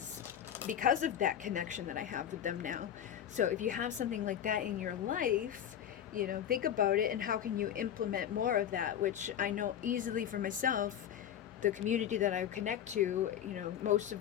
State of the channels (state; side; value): quieter; right; 9.8 dB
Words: of that connection that I have with them now. So if you have something like that in your life, you know, think about it and how can you implement more of that, which I know easily for myself. The community that I connect to, you know, most of